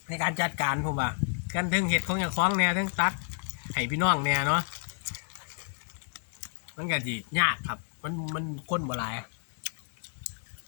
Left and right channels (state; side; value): silent; right; digital silence